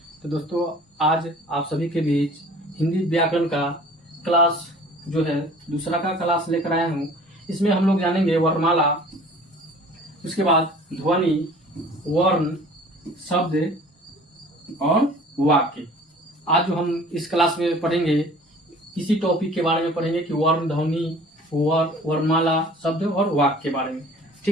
तो दोस्तों, आज आप सभी के बीच हिंदी व्याकरण का क्लास जो है दूसरा का क्लास लेकर आया हूं। इसमें हम लोग जानेंगे वर्णमाला, उसके बाद ध्वनि, वर्ण, शब्द और वाक्य। आज जो हम इस क्लास में पढ़ेंगे इसी टॉपिक के बारे में पढ़ेंगे कि वर्ण, ध्वनि, वर्णमाला, शब्द और वाक्य के बारे में।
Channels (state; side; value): normal; both; correlation 0.48